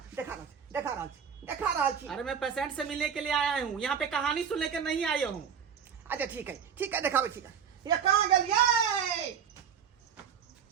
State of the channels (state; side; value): quieter; left; 7.5 dB